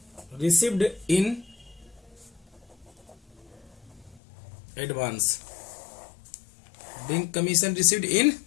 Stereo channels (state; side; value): drops out; right; at 4.2 s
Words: received in advance, being commission received in